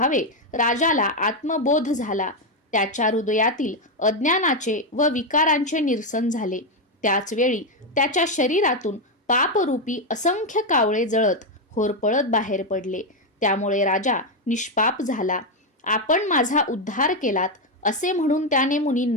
राजाला आत्मबोध झाला. त्याच्या हृदयातील अज्ञानाचे व विकारांचे निरसन झाले. त्याच वेळी त्याच्या शरीरातून पापरूपी असंख्य कावळे जळत होरपळत बाहेर पडले. त्यामुळे राजा निष्पाप झाला. आपण माझा उद्धार केलात असे म्हणून त्याने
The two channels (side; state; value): both; normal; correlation 0.05